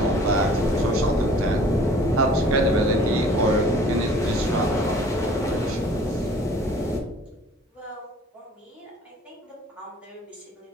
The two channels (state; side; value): normal; both; correlation 0.51